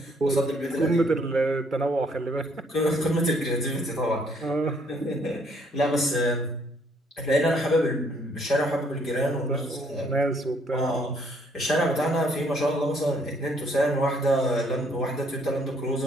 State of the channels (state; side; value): normal; both; correlation 0.66